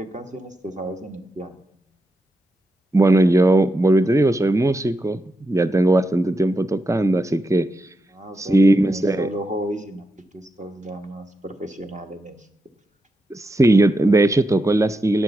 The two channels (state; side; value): normal; both; correlation 0.86